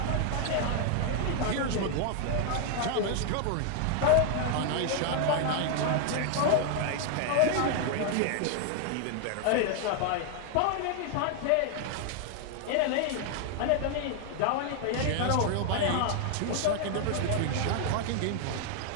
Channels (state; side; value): different; both; correlation 0.00